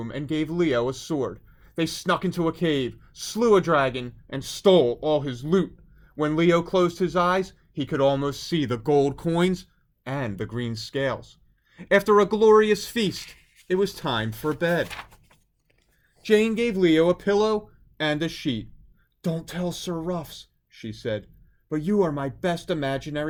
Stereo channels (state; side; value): identical; both; correlation 1.00